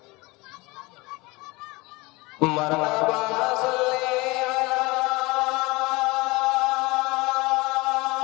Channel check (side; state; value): right; quieter; 23.7 dB